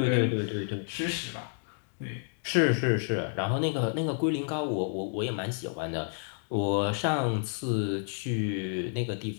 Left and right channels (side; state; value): right; silent; digital silence